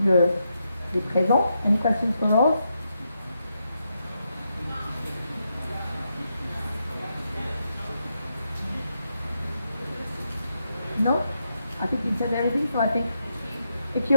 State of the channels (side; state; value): both; inverted; correlation -0.82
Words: les présents? Any questions for Rose? No? I think you said everything, so I think if